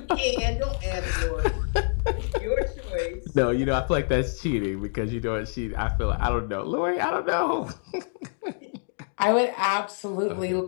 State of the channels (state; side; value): silent; right; 61 dB below the other